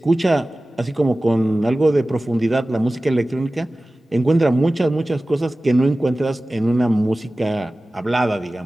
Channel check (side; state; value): both; normal; correlation 0.97